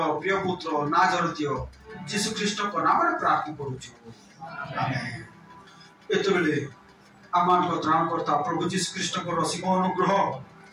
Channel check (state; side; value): identical; both; correlation 1.00